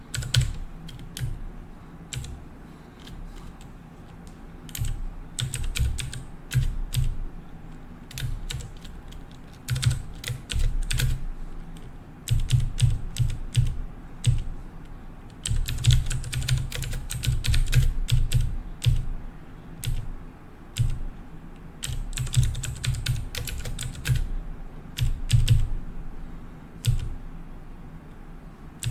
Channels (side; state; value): both; identical; correlation 1.00